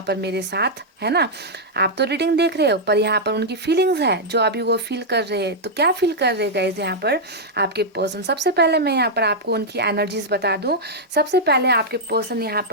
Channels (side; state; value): both; normal; correlation -0.05